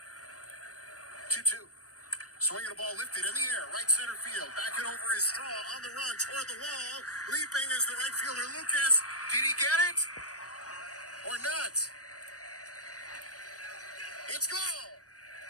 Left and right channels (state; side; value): late; right; 0.67 ms